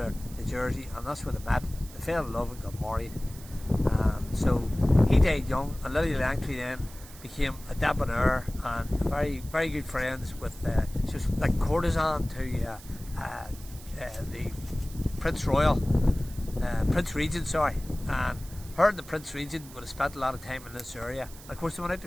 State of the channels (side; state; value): right; noise; hiss, 18 dB below the sound